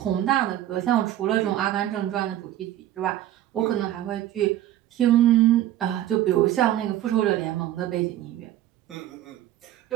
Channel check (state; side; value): quieter; left; 13.0 dB